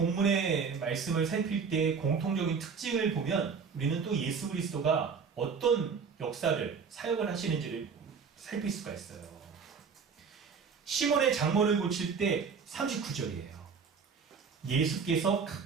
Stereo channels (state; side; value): quieter; left; 5.8 dB